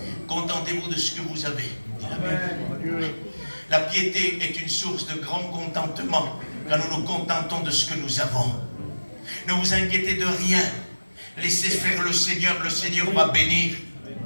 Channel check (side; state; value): both; inverted; correlation -1.00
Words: Contentez-vous de ce que vous avez, dit la Bible. La piété est une source de grand contentement quand nous nous contentons de ce que nous avons. Ne vous inquiétez de rien. Laissez faire le Seigneur va bénir.